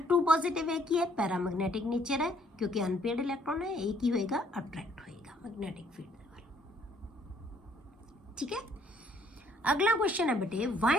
2 पॉजिटिव है की है पैरामैग्नेटिक नेचर है क्योंकि अनपेयर्ड इलैक्ट्रॉन है ये की होएगा अट्रैक्ट होएगा मैग्नेटिक फील्ड दे वाल ठीक है अगला क्वेश्चन है बेटे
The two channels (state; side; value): normal; both; correlation 0.64